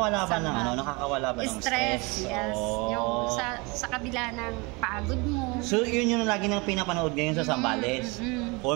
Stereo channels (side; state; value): left; quieter; 27.4 dB